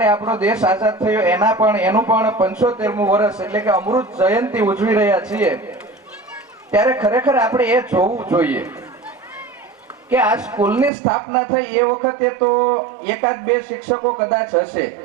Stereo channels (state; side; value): drops out; left; at 10.9 s